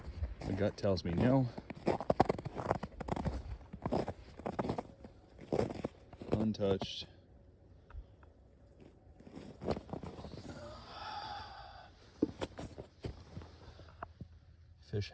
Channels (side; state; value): both; identical; correlation 1.00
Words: My gut tells me no. Untouched. Fish